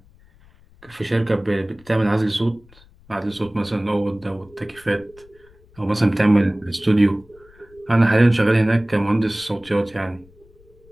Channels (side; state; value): left; noise; rumble, 28 dB below the sound